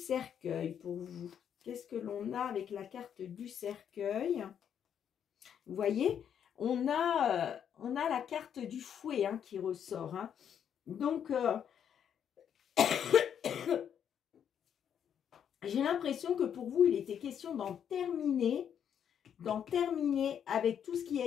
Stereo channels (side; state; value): right; quieter; 8.6 dB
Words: pour vous? Qu'est-ce que l'on a avec la carte du cercueil? Vous voyez, on a la carte du fouet hein, qui ressort. Hein. Donc, j'ai l'impression que pour vous, il était question d'en terminer d'en terminer avec tout ce qui a